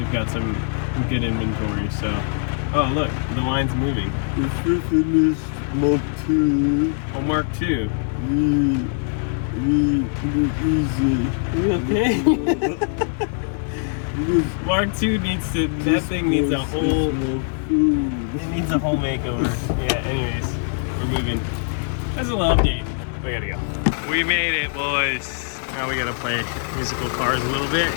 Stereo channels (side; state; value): right; silent; digital silence